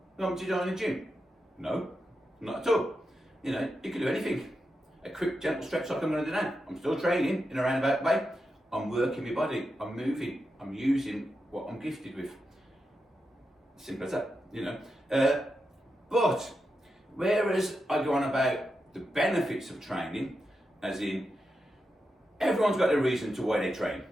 you want me to join a gym? No, not at all. You know, you can do anything. A quick, gentle stretch like I'm going to do now. I'm still training in a roundabout way. I'm working my body. I'm moving. I'm using what I'm gifted with. Simple as that, you know. But whereas I go on about the benefits of training, as in everyone's got a reason to why they train.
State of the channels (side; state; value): both; normal; correlation 0.88